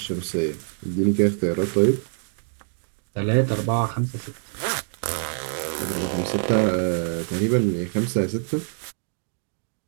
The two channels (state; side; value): silent; left; digital silence